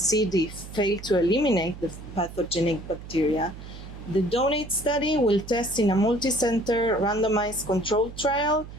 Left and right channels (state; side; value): noise; right; hum, 14 dB below the sound